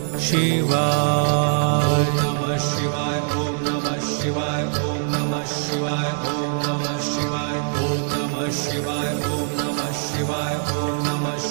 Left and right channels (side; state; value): left; silent; digital silence